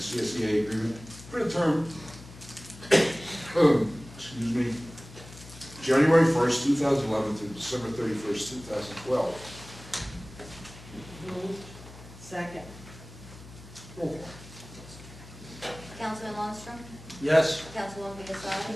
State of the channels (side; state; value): left; noise; hum, 17 dB below the sound